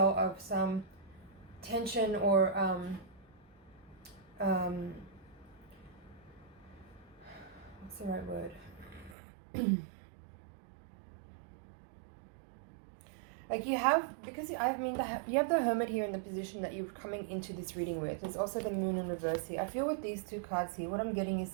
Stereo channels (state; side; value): drops out; left; at 9.2 s